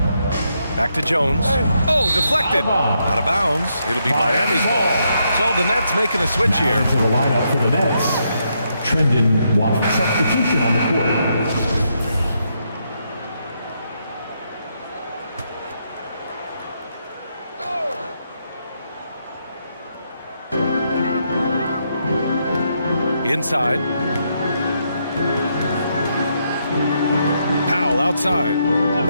Back to Jones. Oh, deflected. Out of bounds. It'll be Miami's ball. So the Nets making a switch here. To the lineup for the Nets. Trendon Watford. Substitution on the court. Inside. Powell outside.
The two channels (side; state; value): both; inverted; correlation -0.78